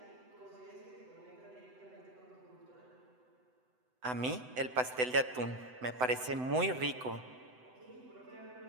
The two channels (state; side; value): late; left; 7.9 ms